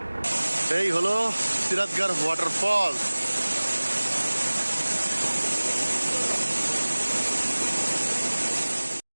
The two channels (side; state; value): both; inverted; correlation -1.00